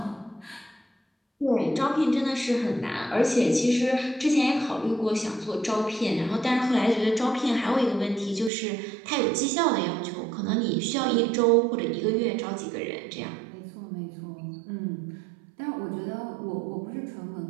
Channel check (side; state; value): left; drops out; at 8.5 s